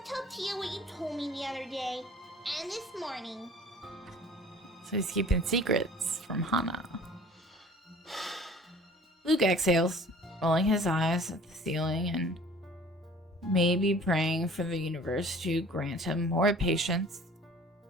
tell Tia what you told me the other day, and this morning. So he's keeping secrets from Hana. Luke exhales, rolling his eyes at the ceiling and maybe praying for the universe to grant him more patience.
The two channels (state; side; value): normal; both; correlation 0.48